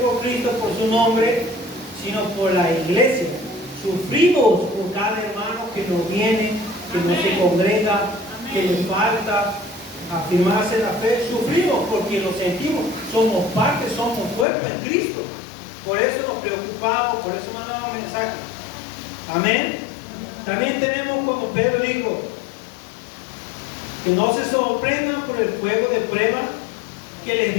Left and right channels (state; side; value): drops out; right; at 14.5 s